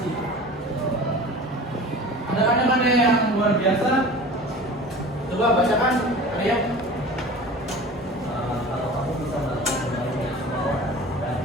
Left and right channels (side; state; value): both; normal; correlation 0.39